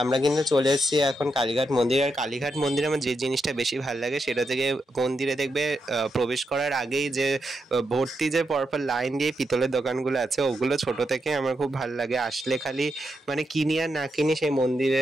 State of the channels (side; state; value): both; normal; correlation 0.84